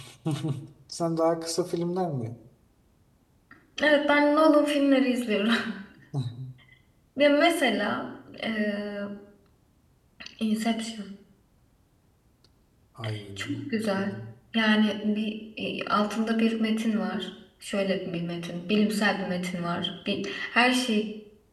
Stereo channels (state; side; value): identical; both; correlation 1.00